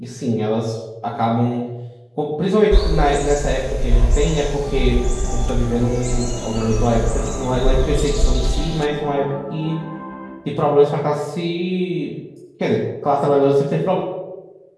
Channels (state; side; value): identical; both; correlation 1.00